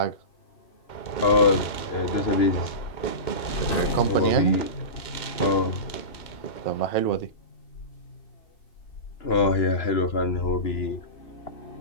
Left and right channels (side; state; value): right; late; 2.2 ms